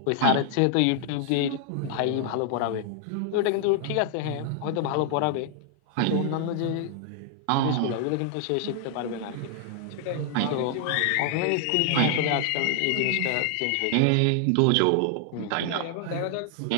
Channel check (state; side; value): different; both; correlation 0.00